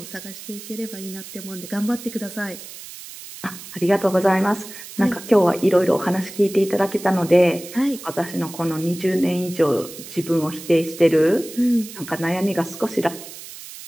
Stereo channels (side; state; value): right; noise; hiss, 14 dB below the sound